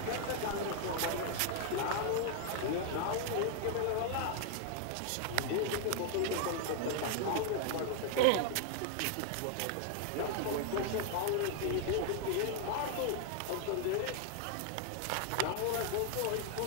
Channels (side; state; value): both; different; correlation 0.00